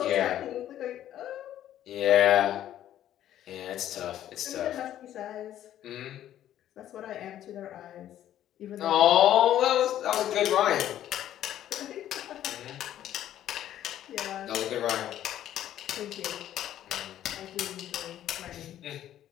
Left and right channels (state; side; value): quieter; right; 11.8 dB